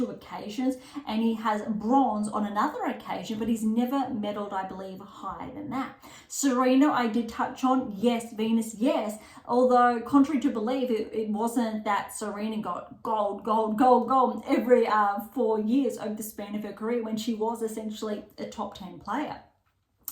occasions, and he has bronze on another occasion, but he's never medalled, I believe, higher than that. Serena, I did touch on. Yes. Venus, yes. Although, contrary to belief, it wasn't that Serena got gold every 4 years over the span of her career when she was essentially a top 10 player.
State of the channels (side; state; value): both; identical; correlation 1.00